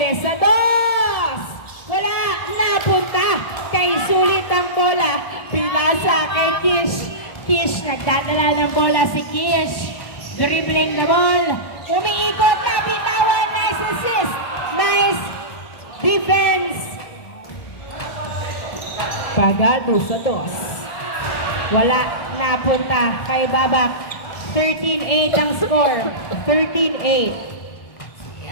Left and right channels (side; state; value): right; late; 1.7 ms